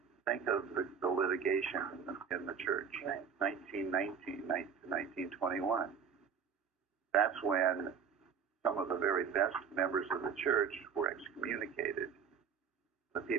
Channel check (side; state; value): left; quieter; 6.8 dB